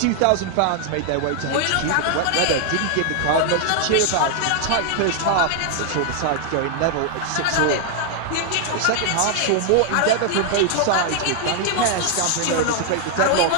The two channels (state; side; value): different; both; correlation 0.00